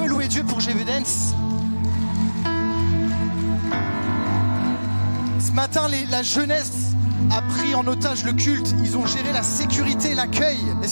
louer Dieu pour GV Dance. Ce matin, la jeunesse a pris en otage le culte. Ils ont géré la sécurité, l'accueil.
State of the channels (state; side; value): inverted; both; correlation -1.00